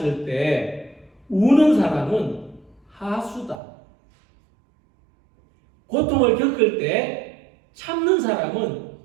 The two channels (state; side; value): drops out; left; at 3.6 s